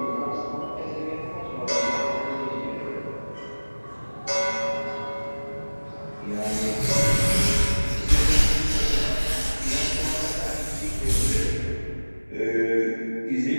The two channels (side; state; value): both; inverted; correlation -1.00